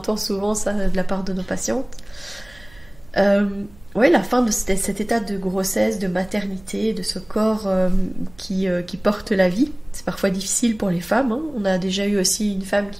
souvent ça de la part de nos patientes. La fin de cet état de grossesse, de maternité, de ce corps qui porte la vie. C'est parfois difficile pour les femmes. Hein. On a déjà eu aussi une femme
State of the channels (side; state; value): right; noise; hum, 25 dB below the sound